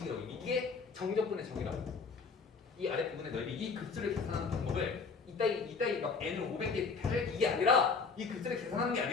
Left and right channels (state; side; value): quieter; right; 4.9 dB